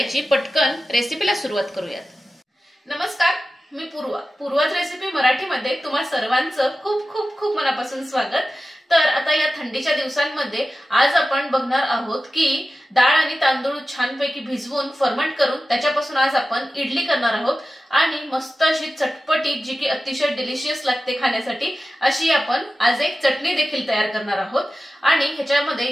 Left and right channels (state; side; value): normal; both; correlation 0.93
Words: पटकन रेसिपीला सुरुवात करूयात। नमस्कार, मी पूर्वाच रेसिपी मराठीमध्ये तुम्हा सर्वांचं खूप खूप खूप मनापासून स्वागत। तर आता या थंडीच्या दिवसांमध्ये आज आपण बघणार आहोत की डाळ आणि तांदूळ छानपैकी भिजवून फर्मंट करून त्याच्यापासून आज आपण इडली करणार आहोत आणि मस्त अशी चटपटीत जी की अतिशय डिलिशियस लागते खाण्यासाठी अशी आपण आज एक चटणी देखील तयार करणार आहोत। आणि ह्याच्यामध्ये